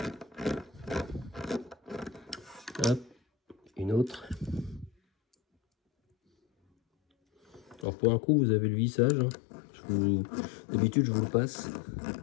Hop. Une autre. Alors pour un coup, vous avez le vissage. Hein. D'habitude, je vous le passe.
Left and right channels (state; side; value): drops out; right; at 7.9 s